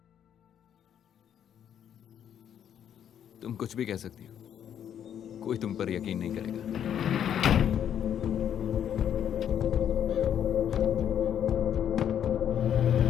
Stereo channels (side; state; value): right; quieter; 9.4 dB